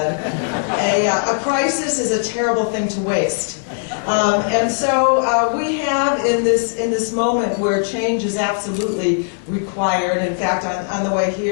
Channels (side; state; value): right; silent; 63 dB below the other